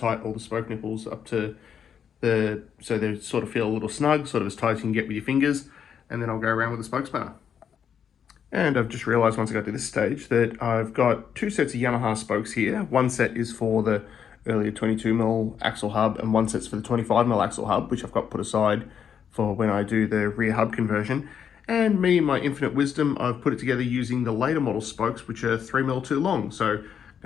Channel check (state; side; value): quieter; right; 7.9 dB